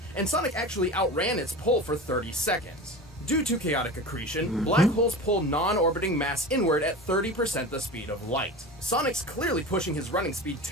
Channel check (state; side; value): normal; both; correlation 0.31